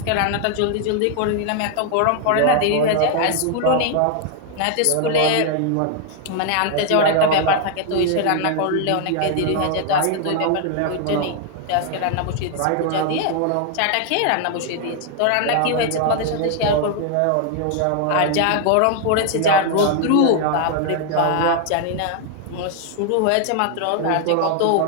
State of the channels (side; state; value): both; different; correlation 0.00